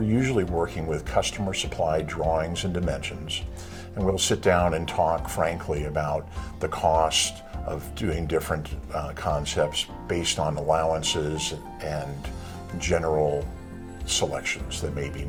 usually working with customer supplied drawings and dimensions, and we'll sit down and talk frankly about the cost of doing different concepts based on allowances and general selections that may be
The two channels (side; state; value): both; identical; correlation 1.00